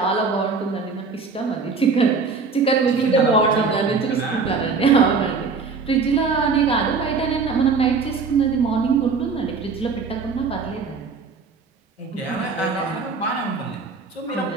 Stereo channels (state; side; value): quieter; left; 4.8 dB